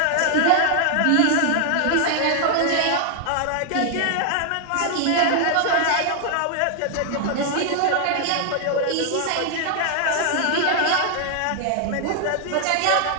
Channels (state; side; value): different; both; correlation 0.00